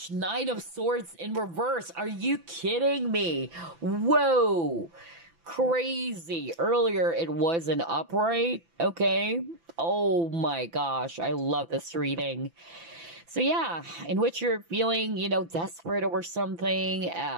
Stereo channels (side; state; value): left; late; 5.9 ms